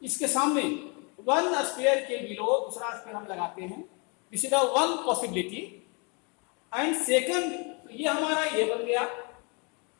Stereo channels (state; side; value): quieter; right; 32.8 dB